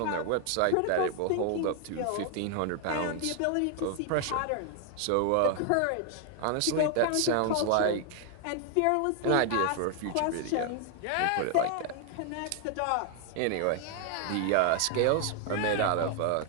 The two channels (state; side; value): different; both; correlation 0.00